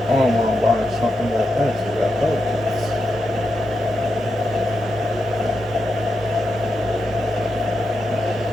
I don't want to buy something that fancy that helps.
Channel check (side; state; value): both; normal; correlation 0.86